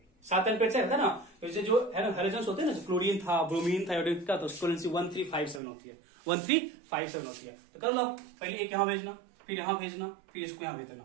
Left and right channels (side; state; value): left; drops out; at 5.6 s